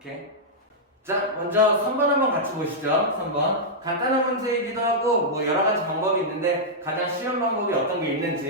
자, 먼저 3번 한번 같이 보시죠. 3번. 간단한 문제이기도 하고 뭐 여러 가지 방법이 있는데 가장 쉬운 방법이 어떤 게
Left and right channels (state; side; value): normal; both; correlation -0.09